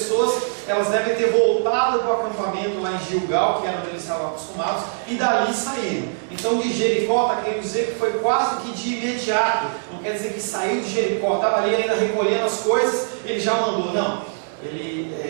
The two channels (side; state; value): left; silent; digital silence